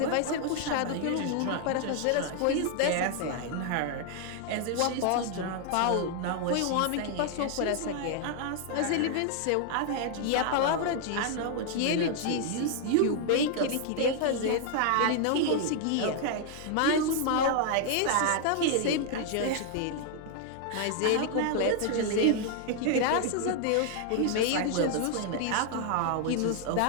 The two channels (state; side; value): different; both; correlation 0.00